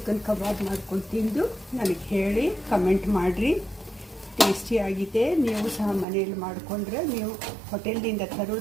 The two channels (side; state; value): left; drops out; at 6.1 s